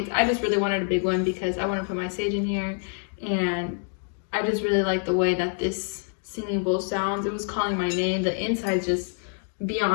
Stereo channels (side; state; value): right; silent; 57 dB below the other